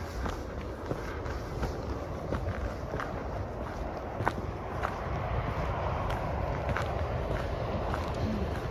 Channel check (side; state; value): both; identical; correlation 1.00